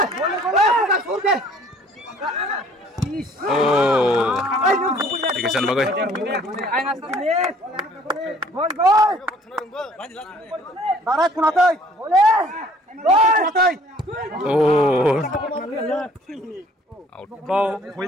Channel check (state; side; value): normal; both; correlation 0.56